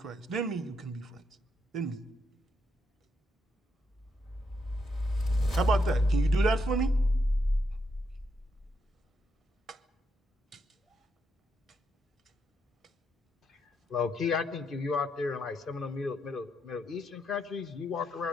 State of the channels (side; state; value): both; normal; correlation 0.80